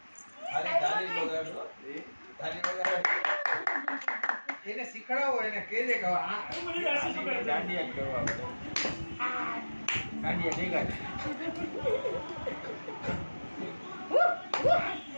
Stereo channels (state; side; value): inverted; both; correlation -1.00